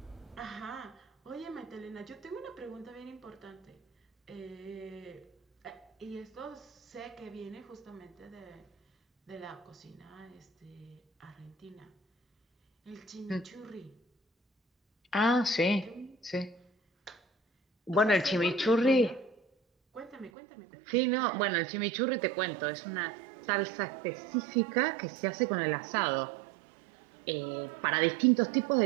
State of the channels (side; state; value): left; drops out; at 20.3 s